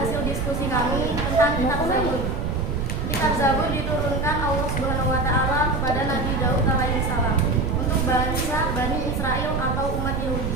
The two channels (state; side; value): noise; right; rumble, 1 dB below the sound